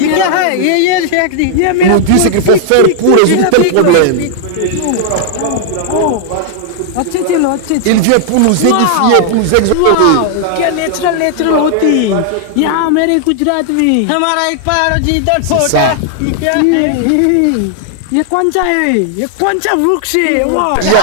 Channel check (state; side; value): different; both; correlation 0.00